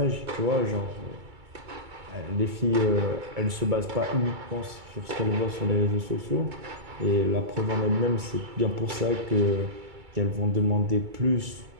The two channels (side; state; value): left; late; 2.3 ms